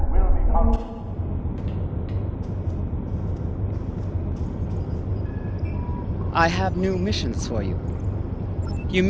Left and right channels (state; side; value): identical; both; correlation 1.00